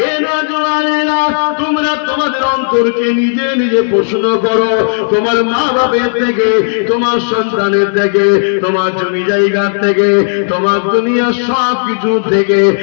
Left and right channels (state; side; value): silent; right; digital silence